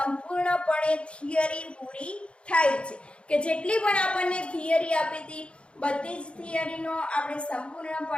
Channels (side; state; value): right; late; 0.058 ms